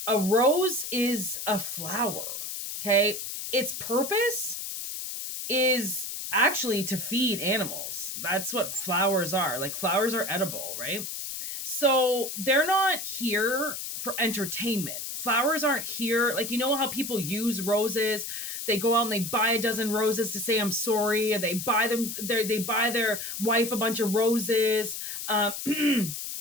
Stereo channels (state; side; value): noise; left; hiss, 6 dB below the sound